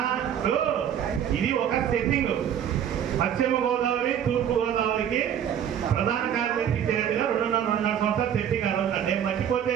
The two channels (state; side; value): quieter; left; 9.3 dB